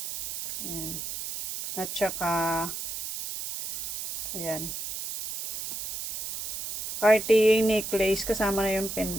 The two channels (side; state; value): right; noise; hiss, 6 dB below the sound